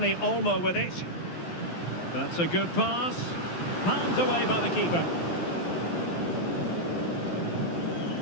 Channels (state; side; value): late; right; 12 ms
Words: Olmo with it. That's a good pass. Palmed away by the keeper.